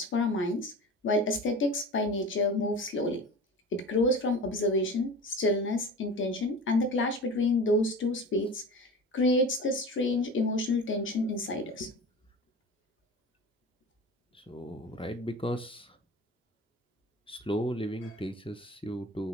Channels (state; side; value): normal; both; correlation 0.34